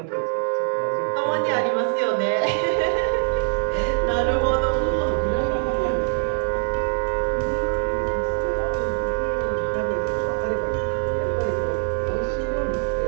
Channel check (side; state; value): left; silent; 63 dB below the other